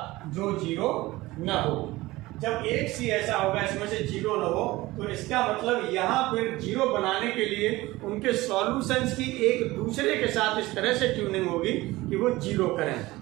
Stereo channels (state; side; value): quieter; left; 19.2 dB